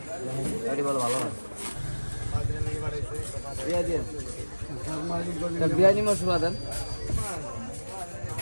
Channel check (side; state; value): both; inverted; correlation -1.00